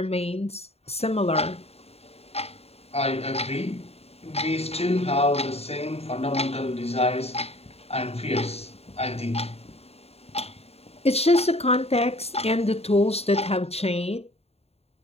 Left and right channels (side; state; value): right; late; 0.30 ms